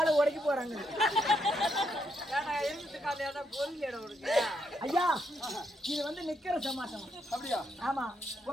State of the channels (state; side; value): normal; both; correlation 0.78